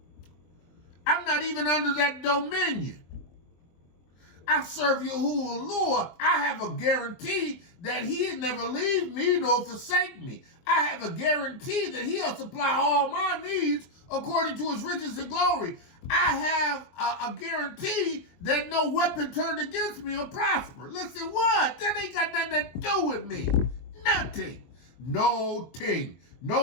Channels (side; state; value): right; late; 23 ms